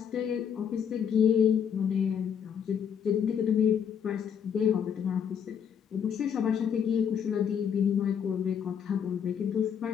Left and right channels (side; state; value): right; quieter; 7.8 dB